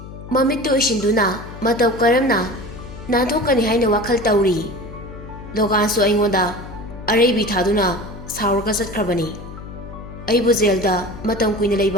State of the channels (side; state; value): left; noise; hum, 13 dB below the sound